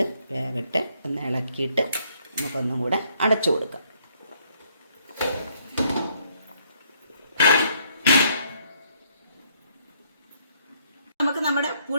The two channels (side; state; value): both; inverted; correlation -0.69